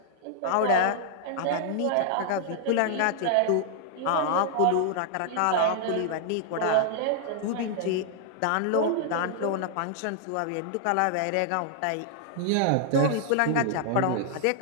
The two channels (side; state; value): both; different; correlation -0.01